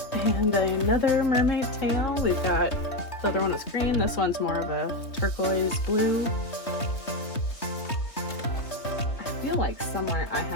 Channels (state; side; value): late; right; 3.2 ms